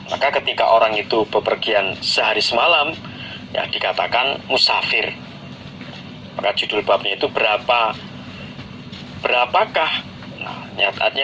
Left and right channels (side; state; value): both; identical; correlation 1.00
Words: Maka ketika orang itu bepergian sehari semalam, ya dikatakan musafir. Maka judul babnya itu berapakah? Nah,